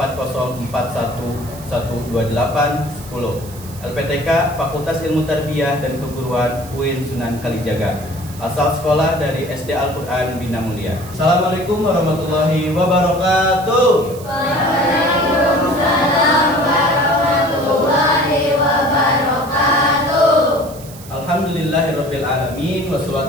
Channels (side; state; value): right; noise; hiss, 18 dB below the sound